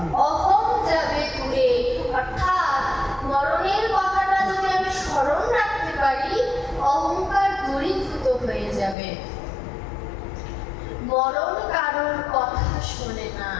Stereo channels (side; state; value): right; drops out; at 9.0 s